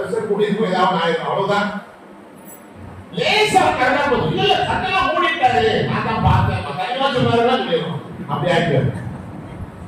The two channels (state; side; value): identical; both; correlation 1.00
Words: கூடி இருக்கும், ஏதாவது ஆயிரும், அவ்வளவுதான். லேசா கரெக்டா போதும். இல்ல கண்ணெல்லாம் மூடிட்டாரு, நான் தான் பார்த்தேன், கண்ணெல்லாம் சொன்னாருதான் சொல்லிடுவோம். அப்படி ஆயிட்டு